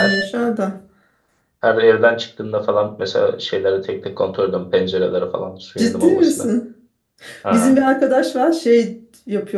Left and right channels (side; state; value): both; identical; correlation 1.00